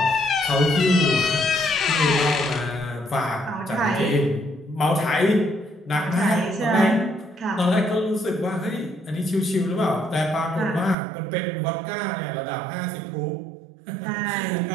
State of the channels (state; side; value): drops out; left; at 11.0 s